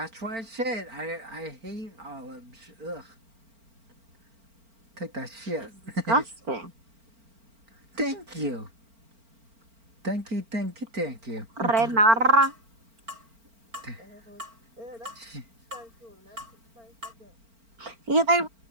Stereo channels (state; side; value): late; left; 4.4 ms